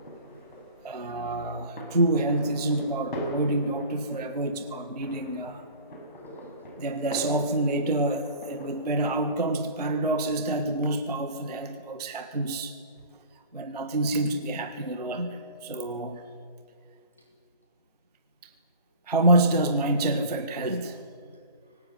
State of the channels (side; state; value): both; inverted; correlation -0.41